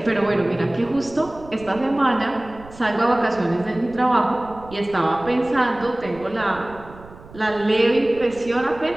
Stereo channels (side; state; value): right; noise; rumble, 19 dB below the sound